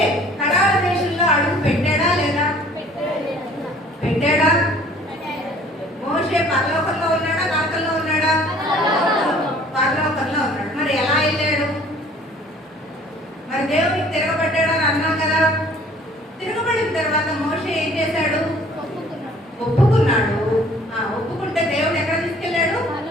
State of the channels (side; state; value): both; normal; correlation 0.53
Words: కనాను దేశంలో అడుగు పెట్టాడా లేదా? పెట్టాడా? మోషే పరలోకంలో ఉన్నాడా, నరకంలో ఉన్నాడా? పరలోకంలో ఉన్నాడు. మరి ఎలా వెళ్ళాడు? మరి దేవుడికి తిరగబడ్డాడని అన్నాం కదా. తిరగబడిన తర్వాత మోషే ఏం చేశాడు? ఒప్పుకున్నాడు. ఒప్పుకుంటే దేవుడు ఎక్కడ తీసుకెళ్ళాడు?